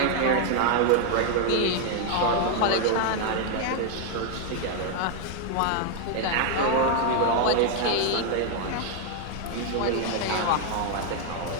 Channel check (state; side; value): different; both; correlation 0.00